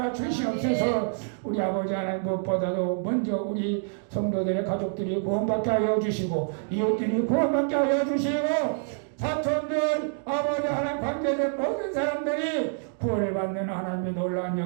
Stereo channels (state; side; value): silent; left; digital silence